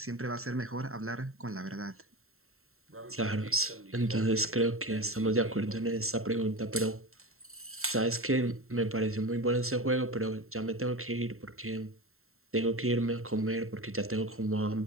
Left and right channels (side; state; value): left; late; 0.62 ms